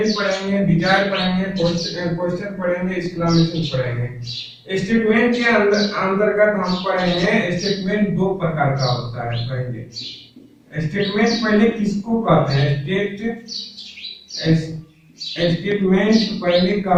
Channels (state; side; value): identical; both; correlation 1.00